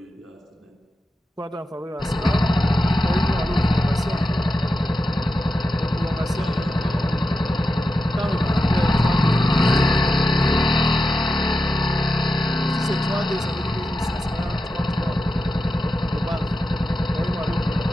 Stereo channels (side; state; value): both; normal; correlation 0.90